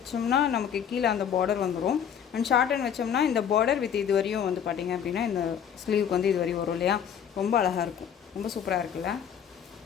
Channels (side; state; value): right; quieter; 8.4 dB